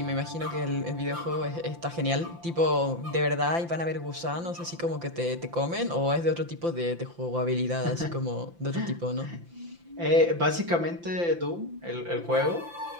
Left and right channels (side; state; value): left; late; 5.8 ms